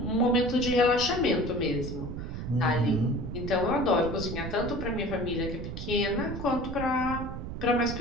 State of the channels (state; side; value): noise; right; rumble, 7 dB below the sound